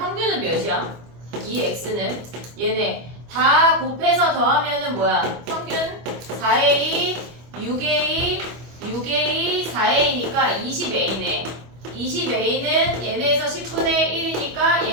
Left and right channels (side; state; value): left; late; 25 ms